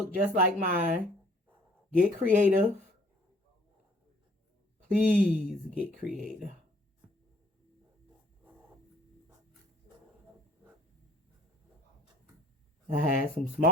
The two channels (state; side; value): normal; both; correlation 0.56